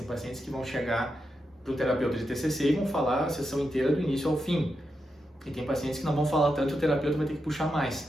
pacientes que vão chegar para o terapeuta de TCC e vão falar a sessão inteira do início ao fim. E tem pacientes que não vão falar tanto e o terapeuta vai ter que puxar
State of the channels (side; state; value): both; normal; correlation 0.86